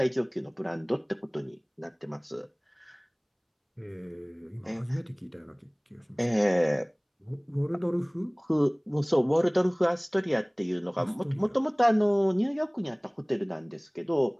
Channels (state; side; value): identical; both; correlation 1.00